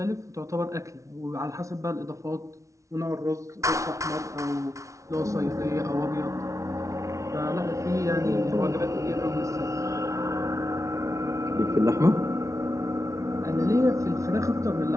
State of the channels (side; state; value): left; late; 0.15 ms